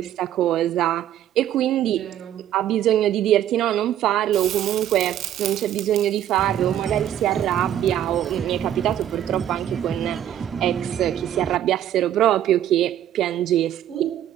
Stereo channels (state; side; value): quieter; left; 11.3 dB